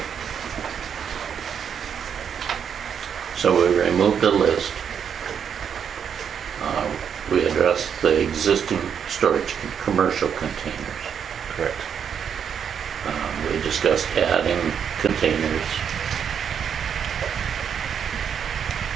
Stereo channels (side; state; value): left; quieter; 7.8 dB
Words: So we removed the list. We addressed the existing storage commercial containers. Correct. We discussed adding containers.